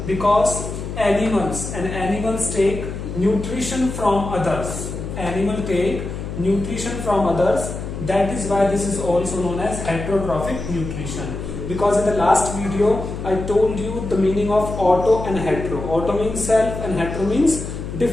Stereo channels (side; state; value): left; noise; hum, 7 dB below the sound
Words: Because animals take nutrition from others. Animal take nutrition from others. That is why this is also known as heterotrophic nutrition. Because in the last video I told you the meaning of auto and hetero. Auto means self and hetero means